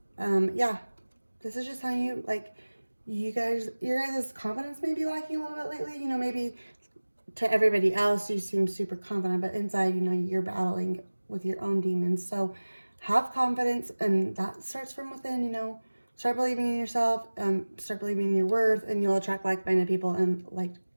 Yeah, this is just telling you, like, your guys' confidence may be lacking a little bit lately. You know, maybe to everybody else you seem super confident, but inside, you know, you're battling with your own demons. So have confidence, and that starts from within. You know, start believing in yourself, start believing in your worth, and you'll attract like-minded people and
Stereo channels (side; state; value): both; inverted; correlation -1.00